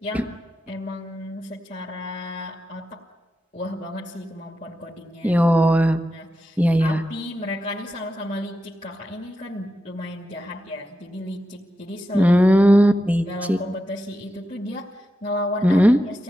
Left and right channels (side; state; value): both; normal; correlation 0.89